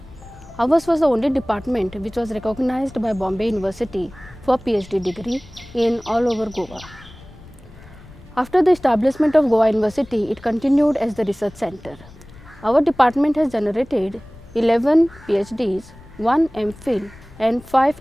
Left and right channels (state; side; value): noise; left; rumble, 21 dB below the sound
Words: Ours was the only department which was recognized by Bombay University for PhD degree in all over Goa. After the establishment of Goa University, it continued as the research center. Our department has generated 11 PhDs, 1 MPhil and